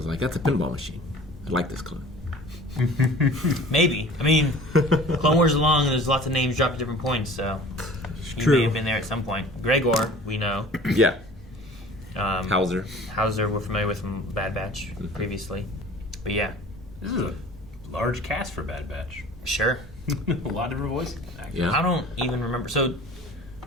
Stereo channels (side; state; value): both; normal; correlation 0.45